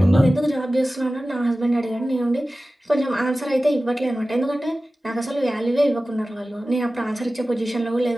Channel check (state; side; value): normal; both; correlation 0.96